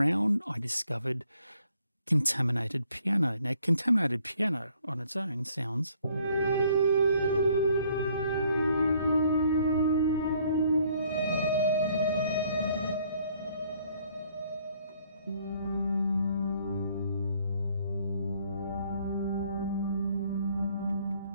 I discovered contaminated piano. Now, contaminated piano on its own sounds...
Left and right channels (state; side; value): inverted; both; correlation -0.64